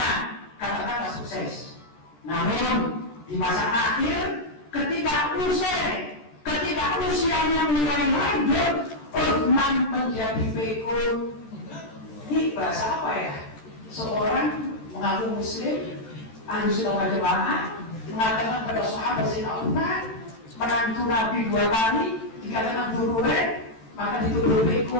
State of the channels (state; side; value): late; right; 13 ms